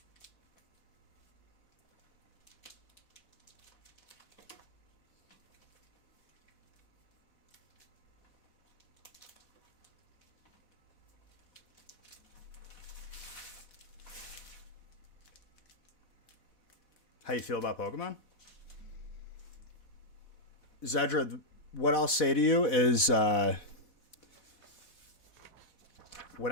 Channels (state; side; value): late; right; 4.1 ms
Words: How you feel about Pokemon? Zedra, what I'll say to you is when